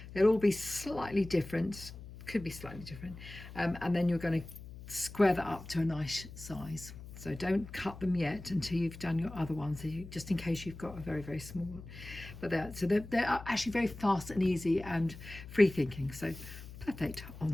They'll all be slightly different, could be slightly different, and then you're going to square that up to a nice size. So don't cut them yet until you've done your other ones, so just in case you've got a very, very small one. But they're actually very fast and easy and free thinking. So perfect.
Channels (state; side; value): noise; left; hum, 14 dB below the sound